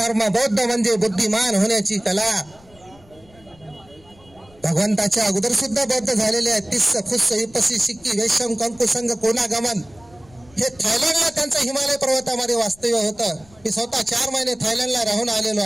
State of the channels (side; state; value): left; noise; rumble, 27 dB below the sound